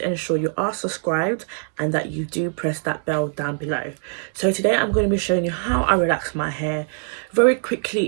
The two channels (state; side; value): silent; left; 64 dB below the other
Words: ensure you are subscribed and that you do press that bell down below. So today I'm going to be showing you how I relax my hair very